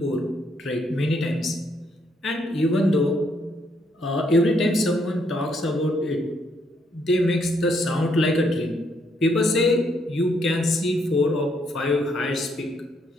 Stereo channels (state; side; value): normal; both; correlation 0.73